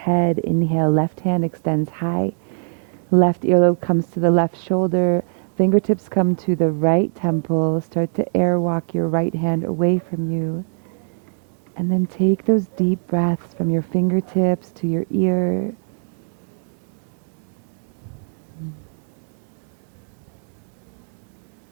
Inhale, left hand extends high. Left earlobe comes to the left shoulder. Fingertips come to the right temple. Start to airwalk your right hand away from you. And then take those deep breaths from your fingertips to your ear.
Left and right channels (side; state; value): left; silent; digital silence